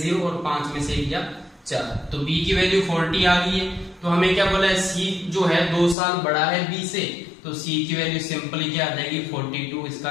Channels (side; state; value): right; drops out; at 6.0 s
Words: और 5 में से 1 गया 4। तो B की वैल्यू 40 आ गई है। तो हमें क्या बोला है, C जो है 2 साल बड़ा है B से, तो C की वैल्यू सिंपली क्या आ जाएगी, 42। इसका